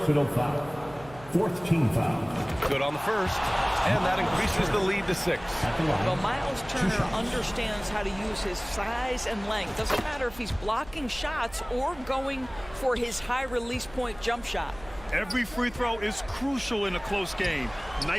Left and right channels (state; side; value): noise; right; hum, 20 dB below the sound